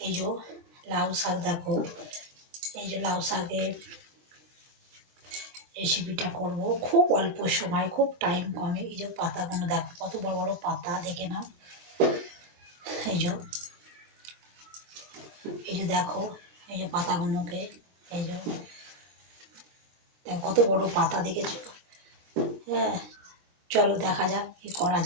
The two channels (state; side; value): late; left; 23 ms